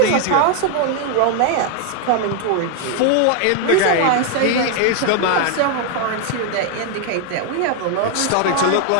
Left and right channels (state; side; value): different; both; correlation 0.00